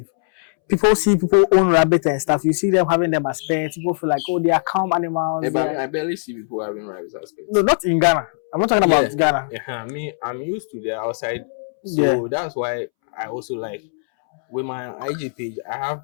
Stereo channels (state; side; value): silent; right; 65 dB below the other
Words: People see people own rabbit and stuff. You see them having them as pets. People feel like, oh, they are calm animals. But I barely see people having rabbits as pets. No, not in Ghana. I'm not talking about Ghana. Yeah, I'm used to the outside, so that's why I also like with my IG page. I have